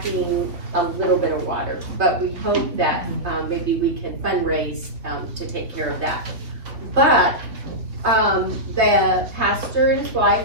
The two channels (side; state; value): left; late; 3.2 ms